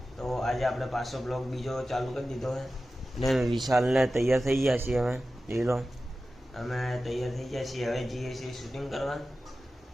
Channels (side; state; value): both; normal; correlation 0.94